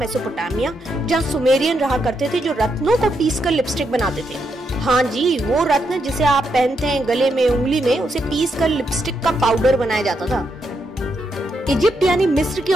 जहाँ सुमेरियन रहा करते थे जो रत्नों को पीसकर लिपस्टिक बनाते थे। हाँ जी, वो रत्न जिसे आप पहनते हैं गले में, उंगली में, उसे पीसकर लिपस्टिक का पाउडर बनाया जाता था। इजिप्ट यानी मिस्र की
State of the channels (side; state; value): both; normal; correlation 0.81